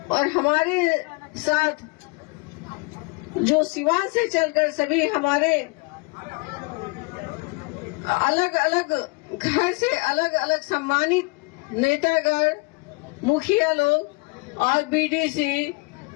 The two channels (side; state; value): right; quieter; 28.6 dB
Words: और हमारे साथ जो सिवान से चलकर सभी हमारे अलग अलग घर से अलग अलग सम्मानित नेतागण, मुखिया लोग और बीडीसी,